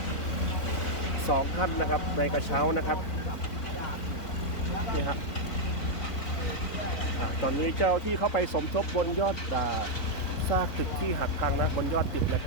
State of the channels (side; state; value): right; late; 4.2 ms